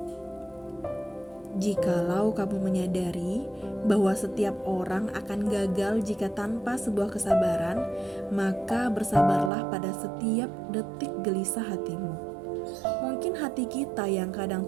Jikalau kamu menyadari bahwa setiap orang akan gagal jika tanpa sebuah kesabaran, maka bersabarlah pada setiap detik gelisah hatimu. Mungkin hati kita yang kadang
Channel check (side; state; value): left; drops out; at 9.5 s